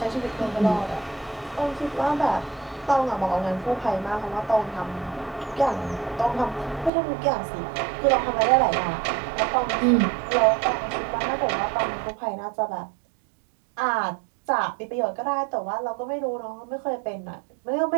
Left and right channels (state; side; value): drops out; left; at 6.9 s